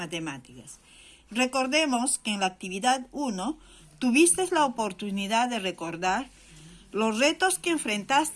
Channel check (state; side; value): identical; both; correlation 1.00